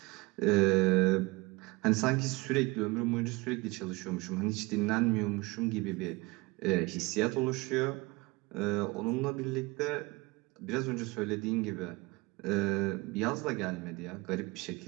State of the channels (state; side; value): quieter; left; 23.6 dB